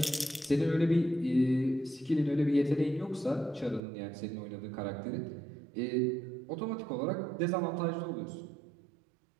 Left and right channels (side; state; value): left; drops out; at 3.8 s